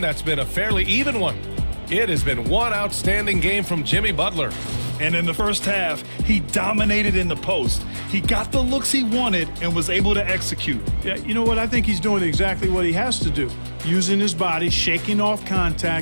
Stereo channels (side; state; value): both; inverted; correlation -1.00